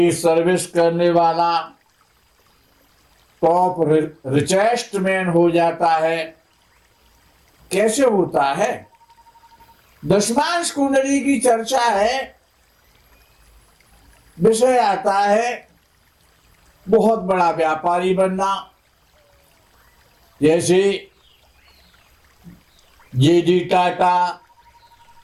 सर्विस करने वाला टॉप रिचेस्ट मैन हो जाता है। कैसे होता है? दशमांश कुंडली की चर्चा है, विषय आता है बहुत बड़ा व्यापारी बनना। जैसे जे.डी. टाटा,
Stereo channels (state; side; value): identical; both; correlation 1.00